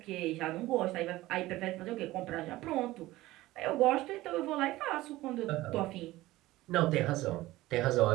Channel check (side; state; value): left; quieter; 17.6 dB